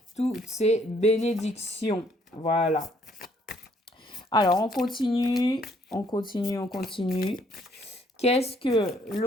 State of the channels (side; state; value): both; normal; correlation 0.66